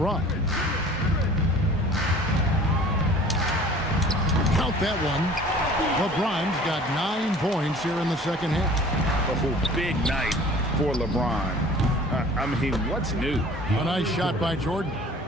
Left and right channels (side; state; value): both; normal; correlation 0.47